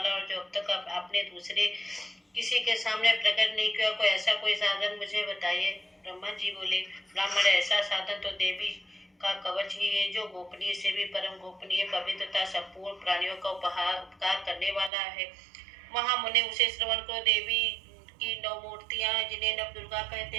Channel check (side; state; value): left; drops out; at 14.9 s